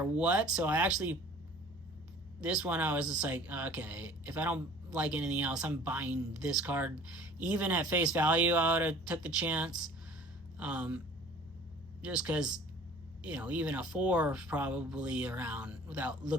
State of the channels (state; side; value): noise; left; hum, 21 dB below the sound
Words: what. So this one I was just like, okay, if I don't like anything else, I'm buying this card. Even at face value, I would have took the chance. Just because, you know, even a 4 is probably around, without